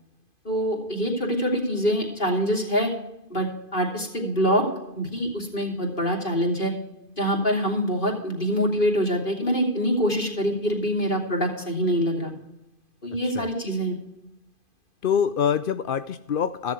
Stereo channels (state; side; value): late; right; 2.5 ms